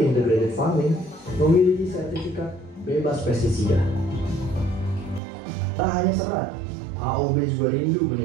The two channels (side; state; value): left; drops out; at 5.2 s